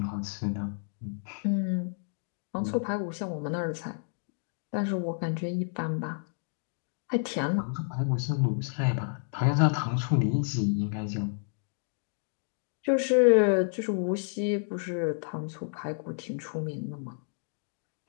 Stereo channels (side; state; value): right; silent; digital silence